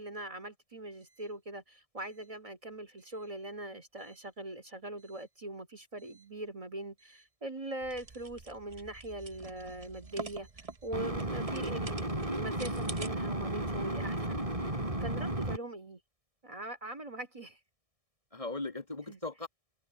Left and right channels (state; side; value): late; left; 1.6 ms